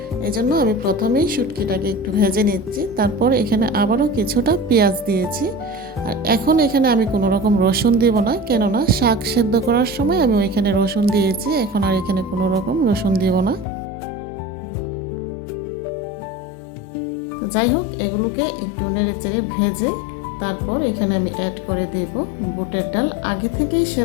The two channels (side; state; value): right; drops out; at 13.7 s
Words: এজন্য আমি প্রথমেই শুটকিটাকে একটু ভেজে নিচ্ছি। তারপর এখানে আবারও কিছুটা পেঁয়াজ দিয়েছি। আর এখন এখানে আমি কোনো রকম রসুন দিব না, কেননা শাক সেদ্ধ করার সময় আমি ওইখানে রসুন দিয়েছি। এখন আর এখানে কোনো রকম রসুন দিব না। যাই হোক, এগুলোকে একটু নেড়ে চেড়ে ভেজে তারপর এখানে আমি অ্যাড করে দেব বুটের ডাল, আগে থেকেই